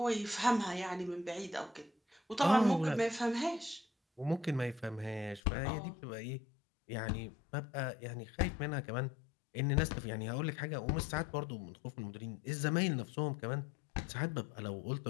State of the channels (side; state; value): right; drops out; at 5.4 s